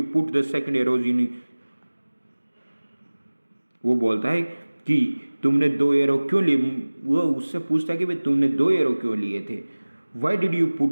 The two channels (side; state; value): both; inverted; correlation -1.00